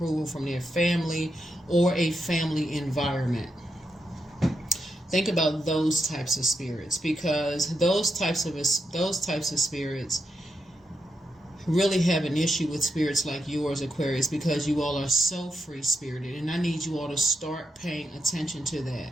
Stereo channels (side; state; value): both; normal; correlation 0.84